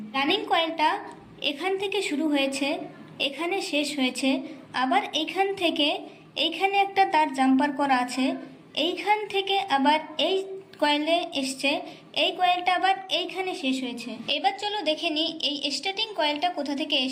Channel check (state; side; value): identical; both; correlation 1.00